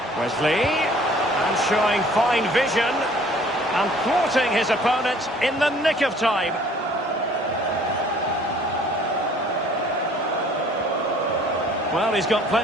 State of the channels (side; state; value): both; normal; correlation 0.54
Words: Wesley, and showing fine vision, and thwarting his opponent in the nick of time. Well, he's got